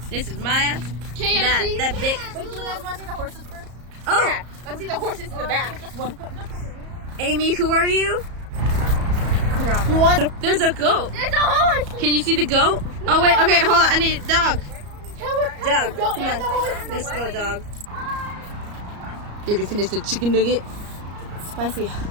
This is Maya. KFC. That big. Wait, do you guys want to see the horses first? Oh, Yeah, let's see the horses in the back. Amy, who are you? What? There's a goat. There's a horse. Can you see the goat? Oh wait, okay, hold on. I need a dog. Dog, Go come and the on. horse. Let's go, dog. You can finish the chicken nugget. Spicy.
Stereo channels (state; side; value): late; left; 34 ms